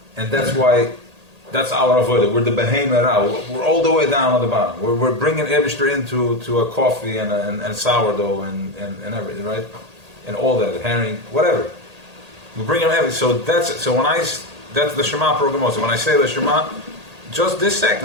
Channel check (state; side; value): late; left; 1.8 ms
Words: And that's why, that's our avodah. We're the behema ra. We're all the way down at the bottom. We're bringing Eibishter into a coffee and sourdough and everything, right? And all that, herring, whatever. We bring him everything. So that's the Shema program also. When I say the Shema, just this